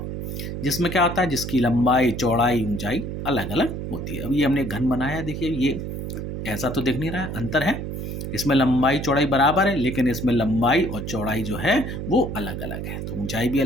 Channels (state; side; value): noise; right; hum, 5 dB below the sound